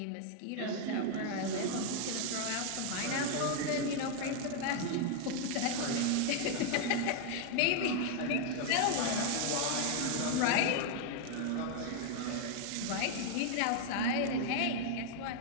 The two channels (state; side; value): different; both; correlation 0.00